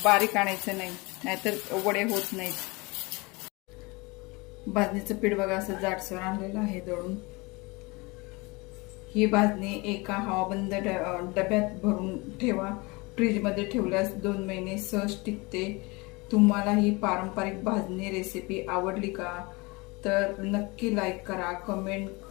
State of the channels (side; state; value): right; quieter; 25.7 dB